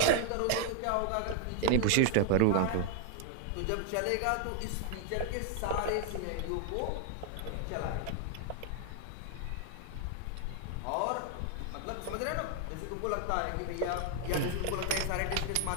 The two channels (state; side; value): different; both; correlation 0.00